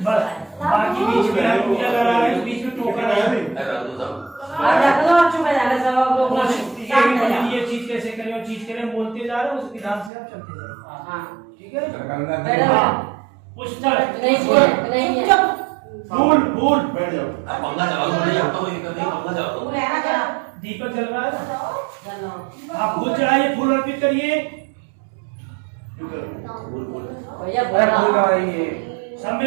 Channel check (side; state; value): left; drops out; at 10.1 s